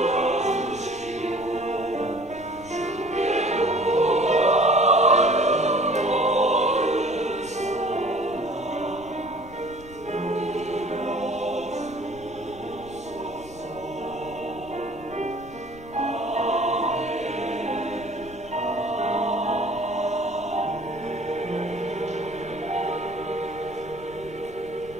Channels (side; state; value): left; noise; rumble, 20 dB below the sound